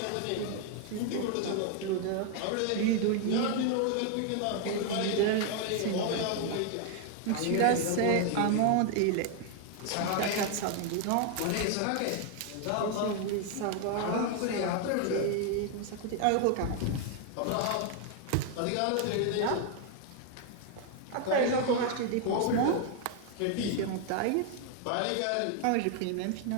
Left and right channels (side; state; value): both; different; correlation 0.00